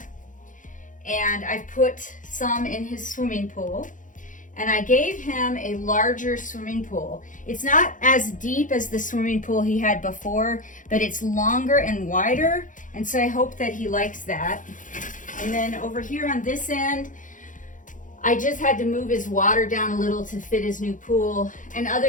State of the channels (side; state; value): right; late; 0.38 ms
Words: And I've put some in his swimming pool. And I gave him a larger swimming pool. It's not as deep as the swimming pool he had before, but it's longer and wider. And so I hope that he likes that. And then over here on this end, I just had to move his water down a little to fit his new pool. And